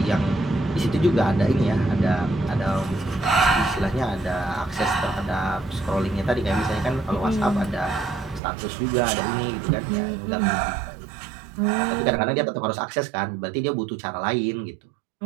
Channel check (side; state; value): left; drops out; at 8.4 s